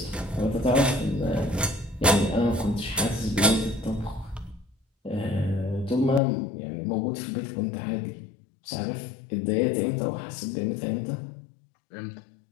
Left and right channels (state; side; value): drops out; right; at 6.2 s